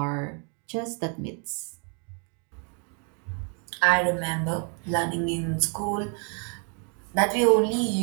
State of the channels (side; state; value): left; quieter; 38.8 dB